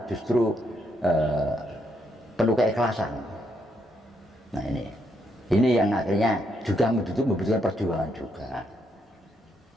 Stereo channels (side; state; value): both; normal; correlation 0.76